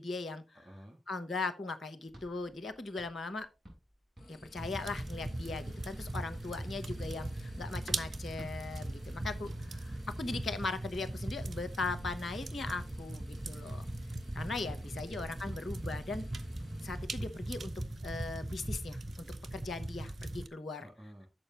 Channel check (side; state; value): both; normal; correlation 0.82